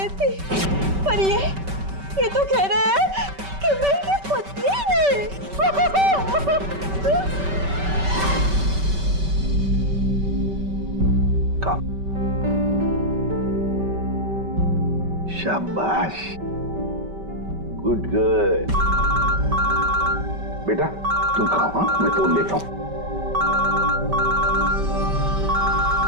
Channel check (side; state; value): left; late; 5.2 ms